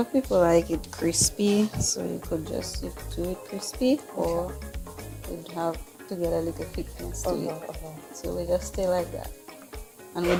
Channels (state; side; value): identical; both; correlation 1.00